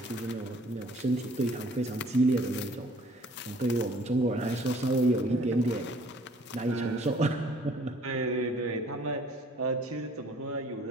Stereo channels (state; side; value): normal; both; correlation 0.56